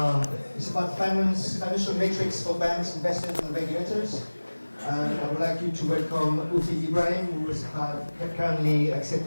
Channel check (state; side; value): inverted; both; correlation -1.00